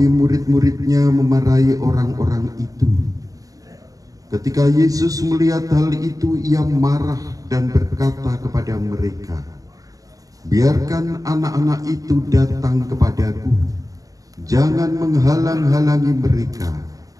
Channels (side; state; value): left; late; 0.17 ms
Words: murid-muridnya memarahi orang-orang itu. Ketika Yesus melihat hal itu, ia marah dan berkata kepada mereka, "Biarkan anak-anak itu datang kepadaku, jangan menghalang-halangi mereka,